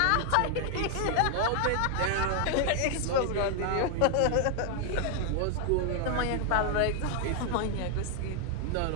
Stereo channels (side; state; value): both; different; correlation 0.00